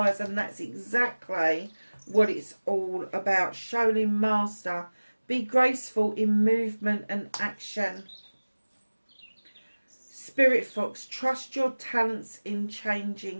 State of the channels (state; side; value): inverted; both; correlation -1.00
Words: And that's exactly what it's all about. Shaolin Master. Be graceful in movement and action. Spirit Fox. Trust your talents in